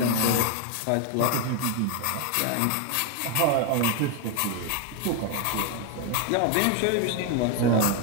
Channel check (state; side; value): different; both; correlation 0.02